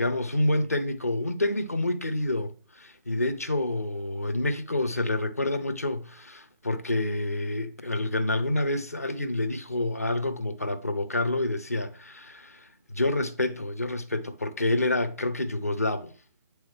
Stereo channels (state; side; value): inverted; both; correlation -0.76